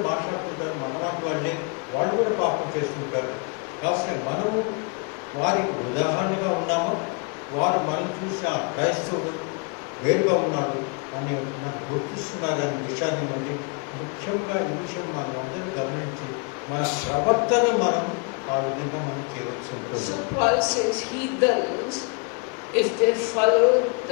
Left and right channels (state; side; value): quieter; right; 34.1 dB